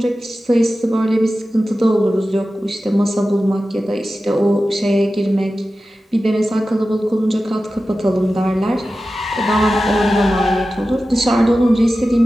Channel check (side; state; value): both; normal; correlation 0.94